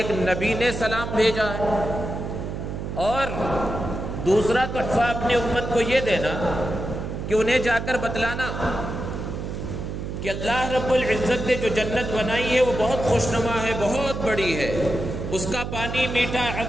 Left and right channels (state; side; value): noise; right; hum, 6 dB below the sound